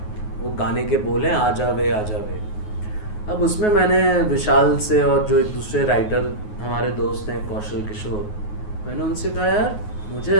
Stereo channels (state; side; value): late; right; 9.4 ms